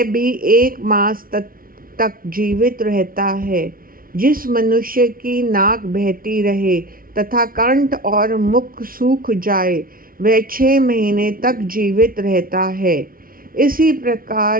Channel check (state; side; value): late; left; 0.42 ms